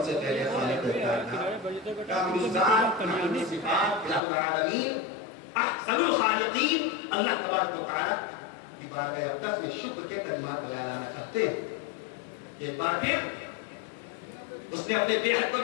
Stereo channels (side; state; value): right; drops out; at 4.2 s